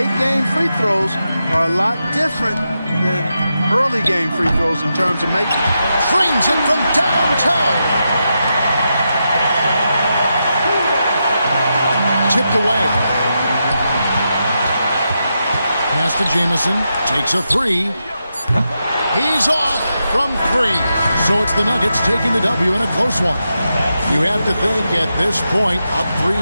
game free throws are a lot different than early game free throws in terms of making. Frames it from downtown. Tipped away. Pass to Jamison. Takes a three. He's off from three. So it's the Nuggets taking the W in a close one. You have to think at this point, up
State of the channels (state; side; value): inverted; both; correlation -0.86